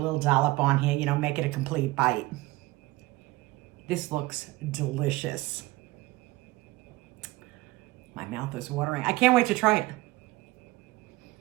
dollop on here, make it a complete bite. This looks delicious. My mouth is watering. I can't wait to try it.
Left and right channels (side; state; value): left; quieter; 19.6 dB